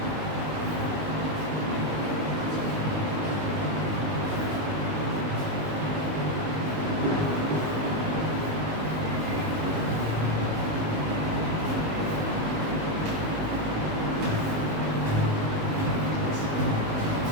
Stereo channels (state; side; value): late; left; 19 ms